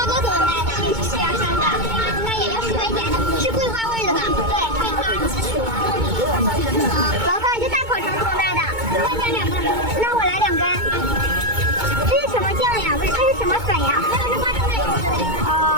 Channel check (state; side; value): late; left; 2.2 ms